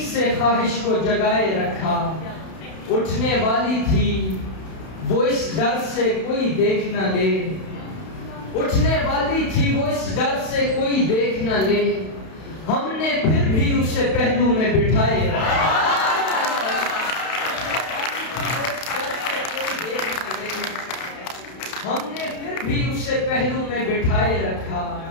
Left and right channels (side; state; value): right; late; 32 ms